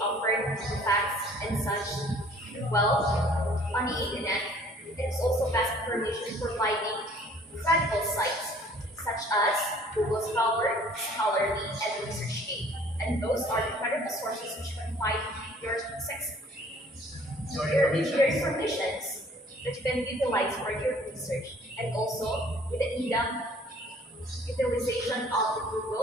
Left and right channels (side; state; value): both; normal; correlation 0.55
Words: offer the facts and such. Well, on the internet, it is also vast information providing credible sites such as Google Scholar, Scholarly, and ResearchGate. And those are the credible sources which can find your informations that you can utilize for your research. And also, with the in-depth utilization of the